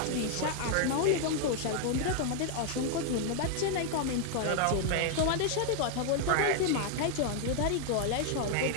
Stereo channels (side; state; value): both; different; correlation 0.00